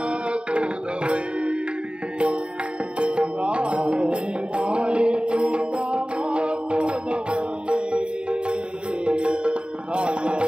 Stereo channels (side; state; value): left; late; 0.053 ms